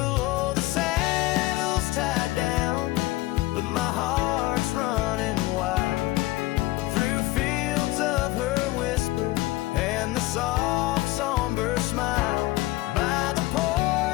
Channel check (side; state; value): right; quieter; 18.6 dB